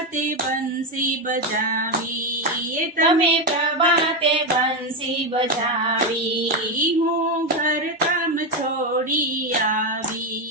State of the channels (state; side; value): normal; both; correlation 0.10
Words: બંસી બજાવી, તમે પ્રભાતે બંસી બજાવી. હું ઘર કામ છોડી